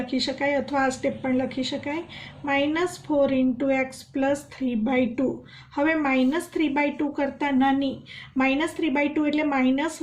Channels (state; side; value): identical; both; correlation 1.00